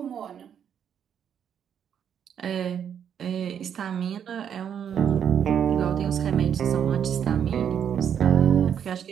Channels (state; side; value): quieter; left; 8.5 dB